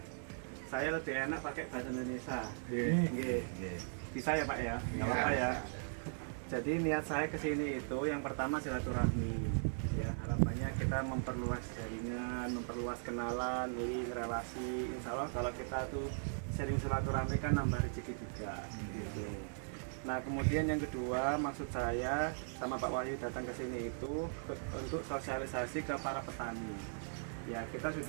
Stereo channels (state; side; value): silent; left; digital silence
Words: Saya lebih enak pakai bahasa Indonesia. Bisa ya Pak ya? Nggak apa-apa ya. Jadi niat saya kesini itu yang pertama silaturahmi. Ya harapannya kita memperluas jaringan, memperluas kenalan, link, relasi. Insya Allah kalau kita tuh sering silaturahmi kan nambah rezeki juga. Gitu. Nah kemudian yang kedua maksud saya sama Pak Wahyu datang ke sini itu untuk sosialisasi ke para petani. Ya kita